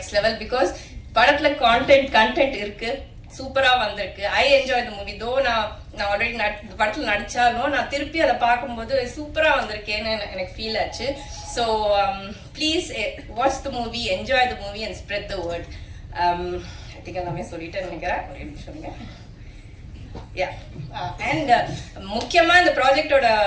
level. Because படத்தில் கண்டென்ட் இருக்கு, சூப்பரா வந்திருக்கு. I enjoy the movie. தோ நான் ஆல்ரெடி படத்தில் நடிச்சாலும் நான் திருப்பி அதை பார்க்கும்போது சூப்பரா வந்திருக்கேன்னு எனக்கு ஃபீல் ஆச்சு. So please watch the movie, enjoy the movie and spread the word. I think எல்லாமே சொல்லிட்டேன்னு நினைக்கிறேன். ஒரு நிமிஷம். அண்ட் முக்கியமா இந்த ப்ராஜெக்டோட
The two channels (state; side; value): identical; both; correlation 1.00